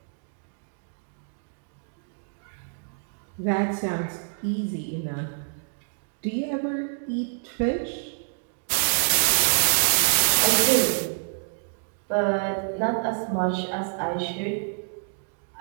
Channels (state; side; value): silent; left; digital silence